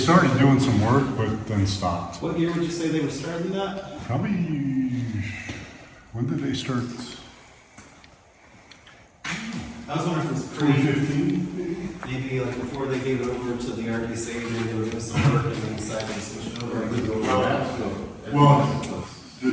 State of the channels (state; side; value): identical; both; correlation 1.00